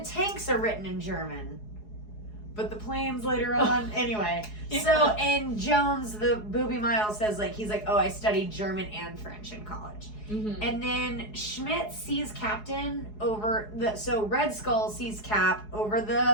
tanks are written in German. But the planes later on, anyway. Yeah. So, and Jones, the Booby Miles, says, like, he's like, oh, I studied German and French in college. Mm-hmm. And then Schmidt sees Captain so Red Skull sees Cap over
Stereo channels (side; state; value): right; late; 4.7 ms